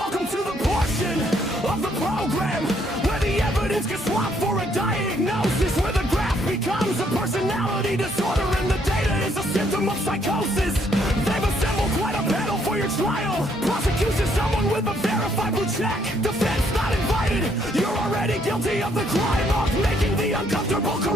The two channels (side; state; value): both; normal; correlation 0.69